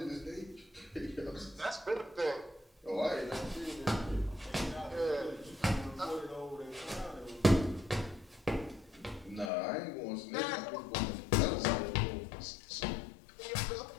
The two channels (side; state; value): right; drops out; at 9.5 s